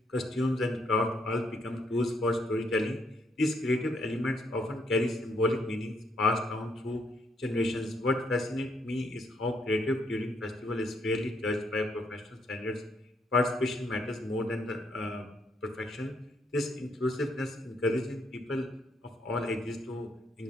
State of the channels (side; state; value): both; normal; correlation 0.73